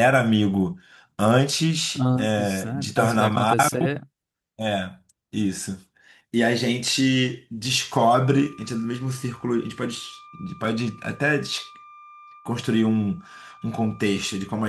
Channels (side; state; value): both; identical; correlation 1.00